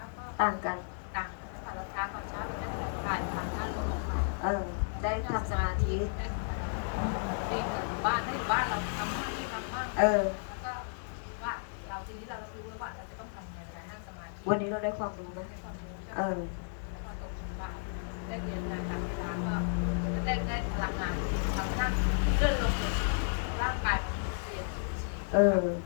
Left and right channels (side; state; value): right; silent; 56 dB below the other